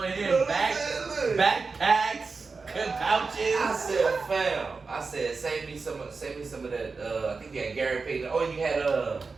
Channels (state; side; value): quieter; left; 4.4 dB